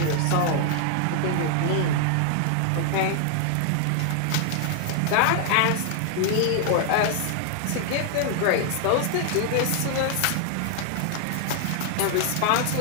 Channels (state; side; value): different; both; correlation 0.00